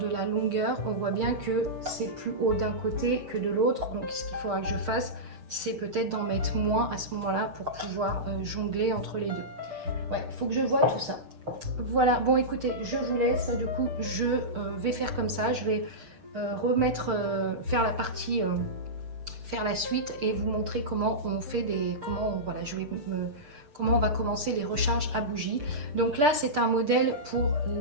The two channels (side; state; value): left; late; 6.7 ms